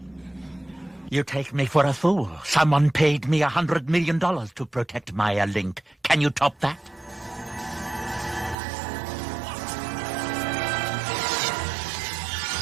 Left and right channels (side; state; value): left; drops out; at 8.6 s